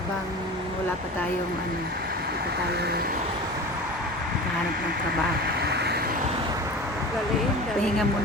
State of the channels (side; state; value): both; normal; correlation 0.34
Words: wala pa tayong ano, dito tayo kahanap ng trabaho. Galing. Pahinga